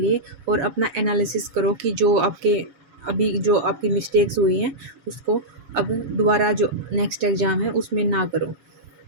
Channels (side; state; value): left; late; 7.1 ms